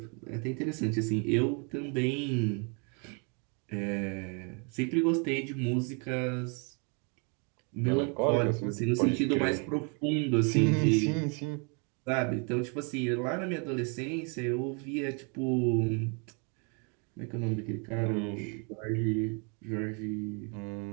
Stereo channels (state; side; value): quieter; left; 36.1 dB